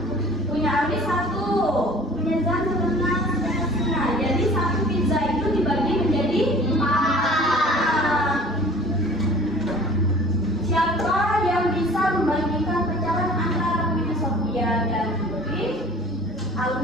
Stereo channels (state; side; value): normal; both; correlation 0.47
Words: Punya Ardi 1, punya Zan 1/2. Jadi 1 pizza itu dibagi menjadi 4. Siapa yang bisa membagikan pecahan antara Winnie, Sophia, dan Putri,